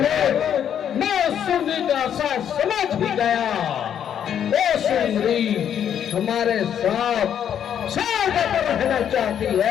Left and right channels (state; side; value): quieter; right; 9.2 dB